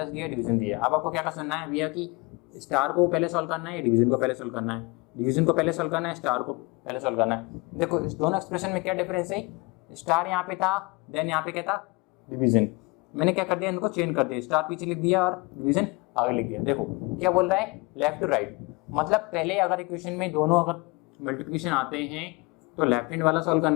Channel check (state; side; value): quieter; right; 26.4 dB